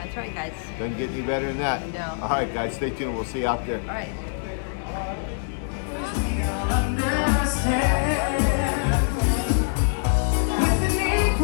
right, guys. Doesn't get any better than that. No. All right, guys, stay tuned. We'll see you out there. All right. Understand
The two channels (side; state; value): right; silent; digital silence